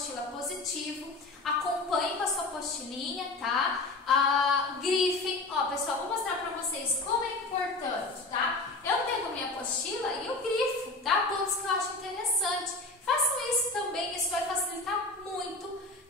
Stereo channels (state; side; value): quieter; right; 3.2 dB